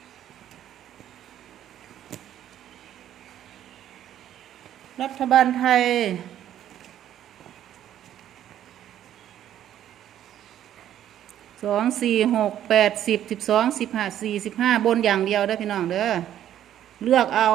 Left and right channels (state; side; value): quieter; left; 11.3 dB